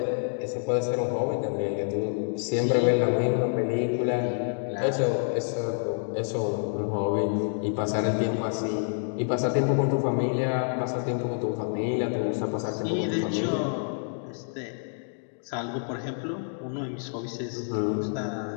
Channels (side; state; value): right; silent; digital silence